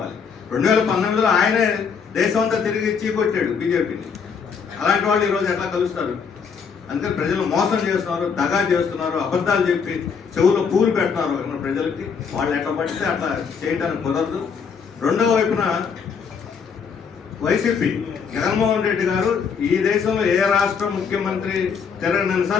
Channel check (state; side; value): quieter; right; 6.2 dB